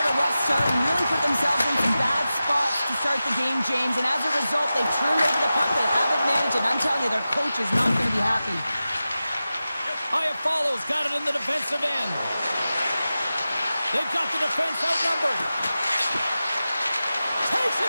a rough start and really put themselves in some bad spots to start the game, James, and as a result, they've turned over the puck. They haven't managed it. I'm telling you, their coach is not going to be happy. Iafallo's got it in the defensive end. They've got the defense outnumbered. Takes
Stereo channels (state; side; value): inverted; both; correlation -0.94